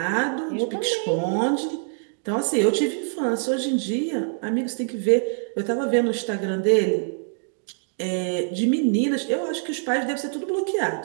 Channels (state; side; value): silent; left; 62 dB below the other